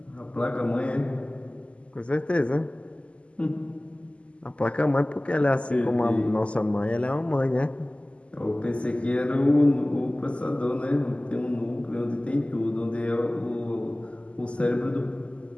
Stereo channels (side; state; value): right; late; 0.056 ms